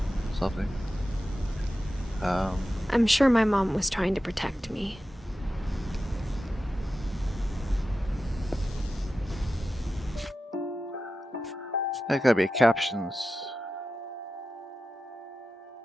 something. I'm sure my mom was trying to protect me. There gotta be captions.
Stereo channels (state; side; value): normal; both; correlation 0.92